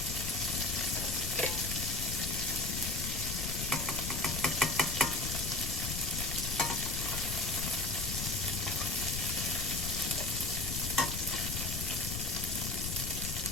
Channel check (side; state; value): left; noise; rumble, 4 dB below the sound